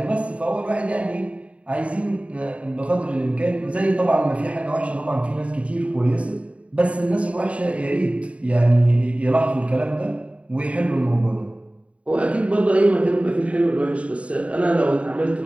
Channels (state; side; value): late; left; 0.064 ms